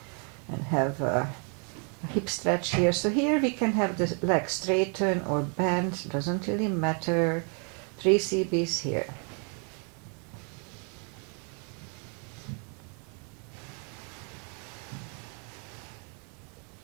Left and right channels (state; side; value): quieter; left; 37.8 dB